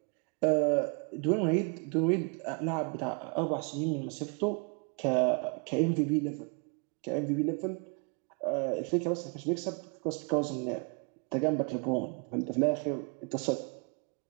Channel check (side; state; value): left; quieter; 36.2 dB